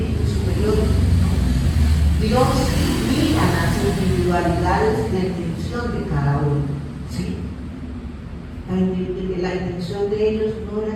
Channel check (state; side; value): identical; both; correlation 1.00